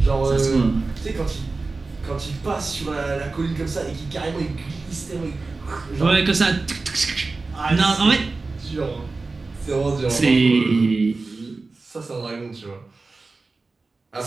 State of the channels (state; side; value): quieter; left; 3.7 dB